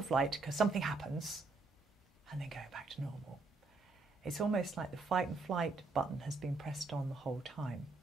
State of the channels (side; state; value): left; quieter; 3.5 dB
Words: flight because something happens and then going back to normal, it's almost like the fight and flight button has been pressed on the whole time.